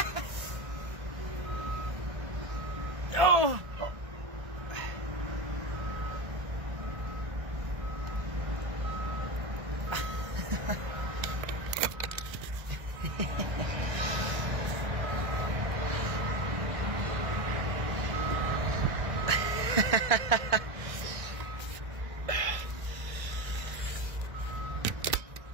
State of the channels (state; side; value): late; left; 1.6 ms